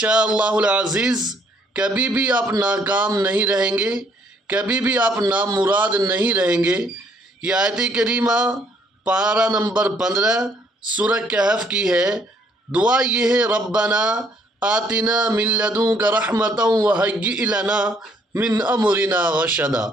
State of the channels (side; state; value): both; normal; correlation 0.66